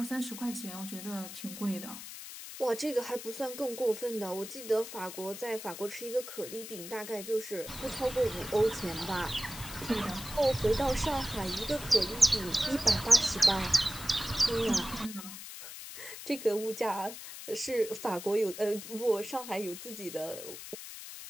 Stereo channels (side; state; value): left; noise; hiss, 11 dB below the sound